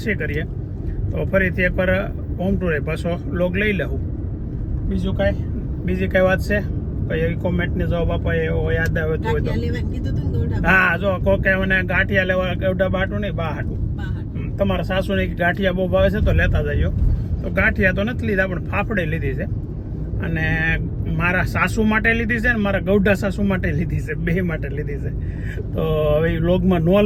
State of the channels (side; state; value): both; identical; correlation 1.00